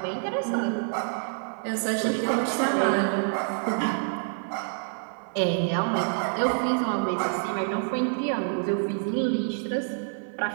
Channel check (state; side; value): silent; left; 60 dB below the other